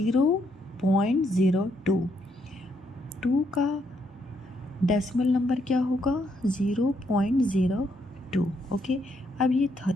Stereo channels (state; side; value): normal; both; correlation 0.74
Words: 2 का डेसिमल नंबर क्या होगा 0.02। ओके, अब ये